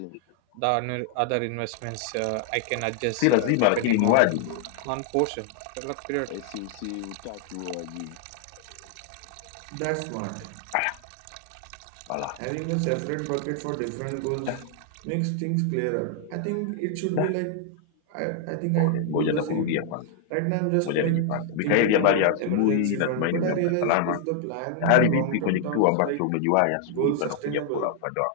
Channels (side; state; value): both; different; correlation 0.00